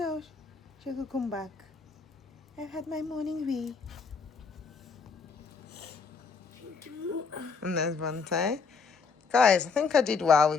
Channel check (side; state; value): right; quieter; 5.1 dB